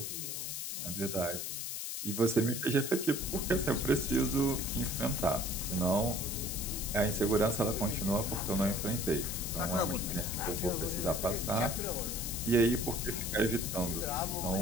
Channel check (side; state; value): left; noise; hiss, 4 dB below the sound